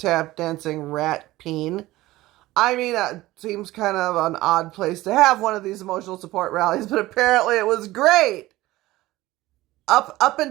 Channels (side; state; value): left; quieter; 17.5 dB